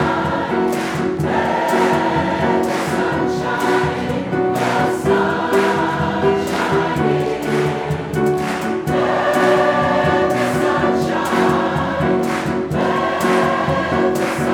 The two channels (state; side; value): identical; both; correlation 1.00